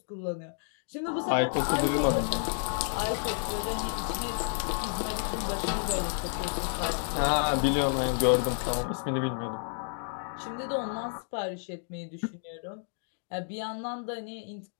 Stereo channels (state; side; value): silent; right; 57 dB below the other